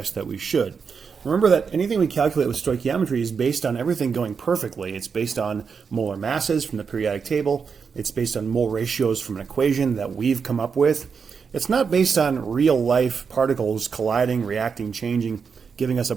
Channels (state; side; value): quieter; left; 5.9 dB